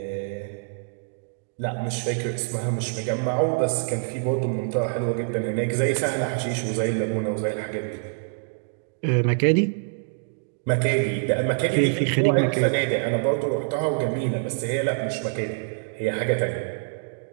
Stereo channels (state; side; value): silent; left; digital silence